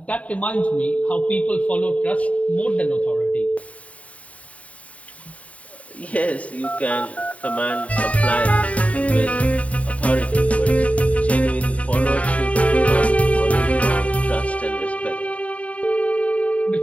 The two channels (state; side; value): late; right; 0.067 ms